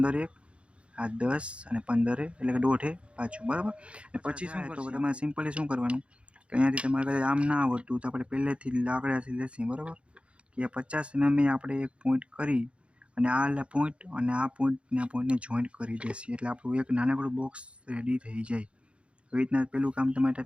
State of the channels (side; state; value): left; late; 0.059 ms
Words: એક આ 10 અને 15 એટલે કે દોઢે પાછું બરાબર. અને પછી શું કરશો તમારે સિમ્પલી શું કરવાનું કે અહીંયાથી તમારે કદાચ આમ ના આવડતું તો આપણે પહેલેથી લાકડાથી લેશી બરાબર કે 50 mm આપણે એક પોઈન્ટ કરી અને આ પોઈન્ટ અને આ પોઈન્ટને જોઈન્ટ કરી દેશી એટલે આપણું એક નાનકડું બોક્સ રેડી થઈ જાય. એવી રીતના પહેલું કામ તમારે